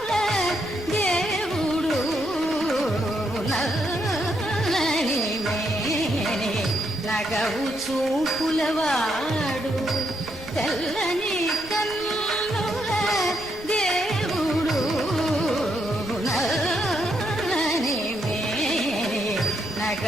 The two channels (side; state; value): right; noise; rumble, 18 dB below the sound